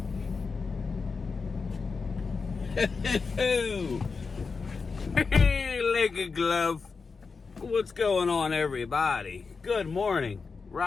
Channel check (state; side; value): quieter; right; 4.8 dB